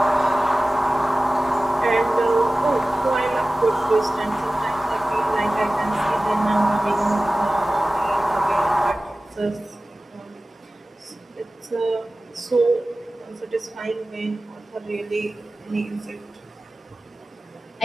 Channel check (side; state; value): both; normal; correlation 0.97